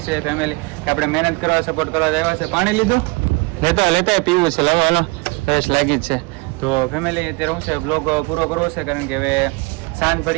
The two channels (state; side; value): quieter; left; 26.5 dB